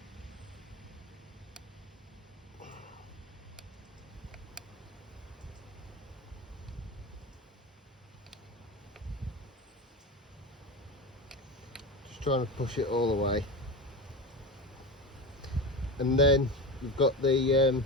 Just trying to push it all the way. And then we've got the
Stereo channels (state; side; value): normal; both; correlation 0.23